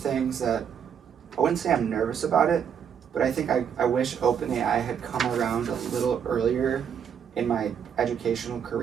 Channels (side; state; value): left; quieter; 7.9 dB